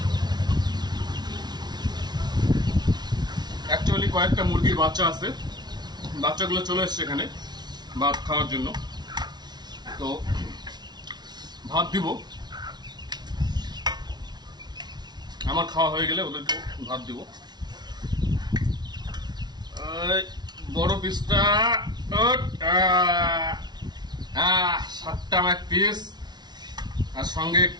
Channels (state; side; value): late; left; 0.20 ms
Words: অ্যাকচুয়ালি কয়েকটা মুরগির বাচ্চা আছে, বাচ্চাগুলো চলে এসছে এখানে ভাত খাওয়ার জন্য, তো ভাত দিব। আমার খাওয়া হয়ে গেলে ওদেরকে ভাত দিব। বড় পিসটা 7টা এক পিস, আর সঙ্গে